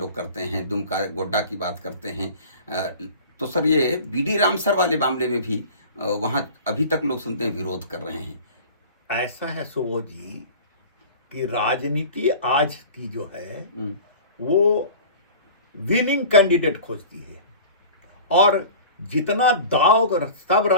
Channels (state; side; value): inverted; both; correlation -0.40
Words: करते हैं, दुमका गोड्डा की बात करते हैं, तो सर ये बीडी राम सर वाले मामले में भी वहाँ अभी तक लोग सुनते हैं विरोध कर रहे हैं। ऐसा है सुबोध जी कि राजनीति आज की जो है वो विनिंग कैंडिडेट खोजती है, और जितना दाव सब